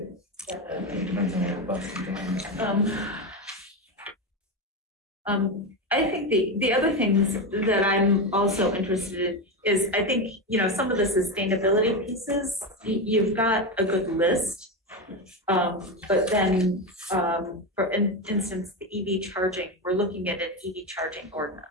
Depends on your bus and I think the other things that I'm also interested in is, I think, some of the sustainability pieces, you've got a good list. But then, for instance, the EV charging, we're looking at an EV charging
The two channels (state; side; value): normal; both; correlation 0.14